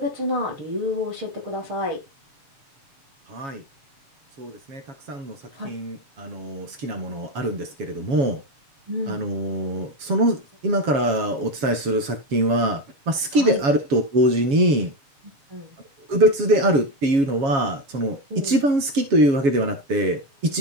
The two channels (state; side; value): late; left; 7.2 ms